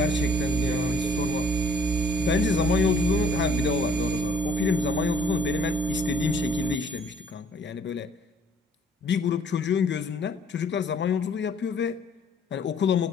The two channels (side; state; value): both; normal; correlation 0.58